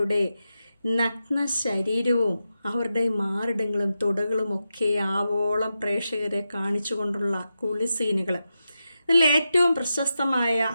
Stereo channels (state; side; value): inverted; both; correlation -0.89